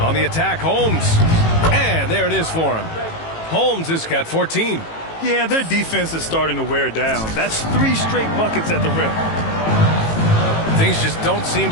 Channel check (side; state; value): right; late; 18 ms